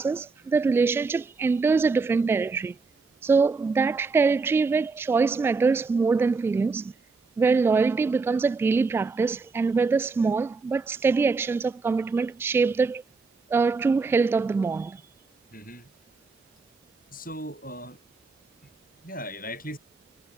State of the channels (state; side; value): quieter; left; 4.3 dB